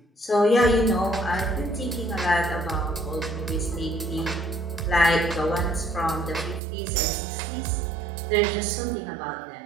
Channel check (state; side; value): drops out; left; at 6.6 s